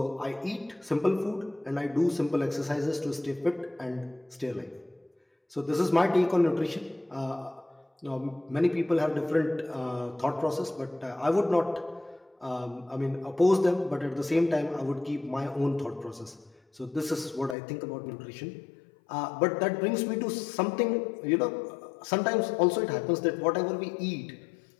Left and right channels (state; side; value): drops out; right; at 17.6 s